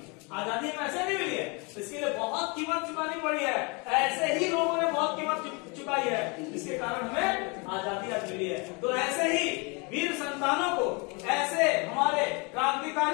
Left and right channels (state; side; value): quieter; right; 30.4 dB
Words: आजादी हमें ऐसे नहीं मिली है, इसके लिए बहुत कीमत चुकानी पड़ी है, ऐसे ही लोगों ने बहुत कीमत चुकाई है, इसके कारण हमें आजादी आज मिली है। तो ऐसे ही वीर संतानों को, ऐसे हमारे